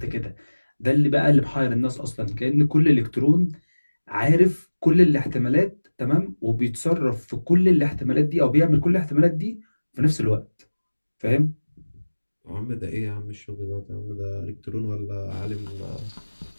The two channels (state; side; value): inverted; both; correlation -1.00